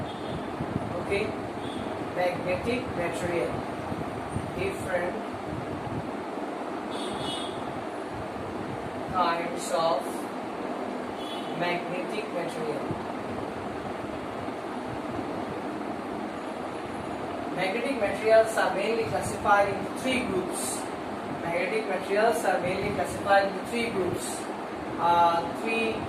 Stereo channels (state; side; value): identical; both; correlation 1.00